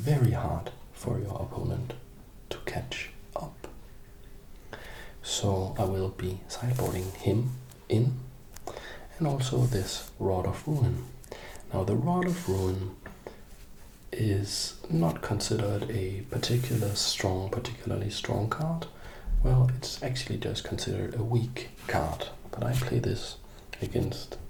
hard for your opponent to catch up. So I will be sideboarding him in, and also this Rod of Ruin. Now the Rod of Ruin is not considered a particularly strong card. Well, it's actually just considered a weak card, but I play this against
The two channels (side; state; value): both; identical; correlation 1.00